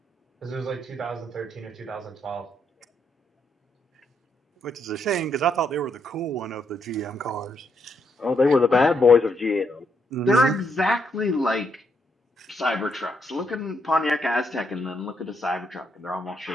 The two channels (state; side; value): normal; both; correlation 0.77